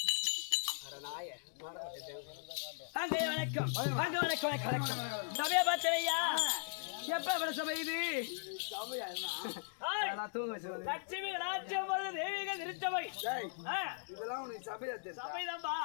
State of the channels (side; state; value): right; silent; digital silence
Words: வாங்கய்யா வணக்கம். வாங்க வணக்கம் வணக்கம். சபையை பார்த்தலையா? எப்ப வர சபை இது? லட்சுமி ராஜ்யம் தெய்வீக திருச்சபை. இதெல்லாம் உனக்கு சபையா தெரியும்? சபைதான்பா.